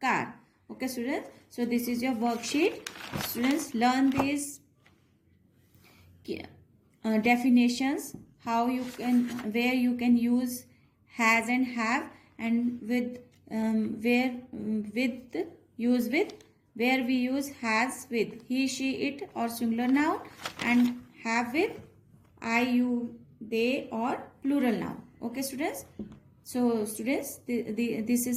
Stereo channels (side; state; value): both; identical; correlation 1.00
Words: car. Okay students, so this is your worksheet. Students, learn these definitions, how you can, where you can use has and have, and with where with use with, where we use has with he, she, it or singular noun, and have with I, you, they or plural noun. Okay students, so students, this